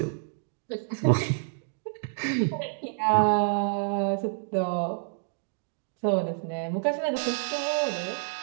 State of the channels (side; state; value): left; silent; digital silence